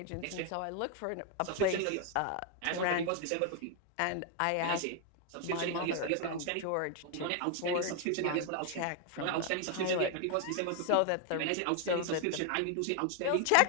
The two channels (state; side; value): different; both; correlation 0.00